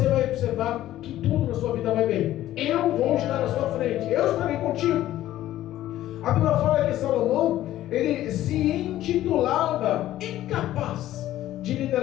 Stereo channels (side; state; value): right; quieter; 13.8 dB